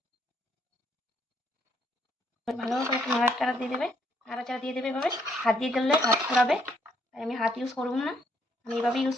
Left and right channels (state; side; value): normal; both; correlation 0.71